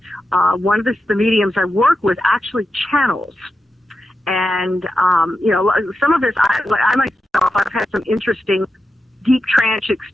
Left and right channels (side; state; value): both; normal; correlation 0.89